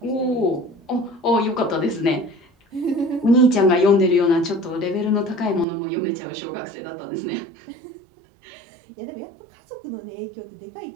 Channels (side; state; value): left; drops out; at 5.7 s